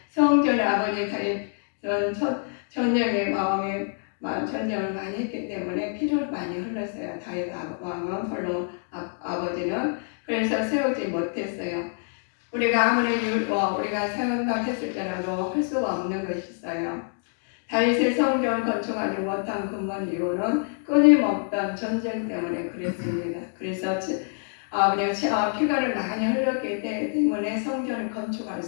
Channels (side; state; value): right; silent; 61 dB below the other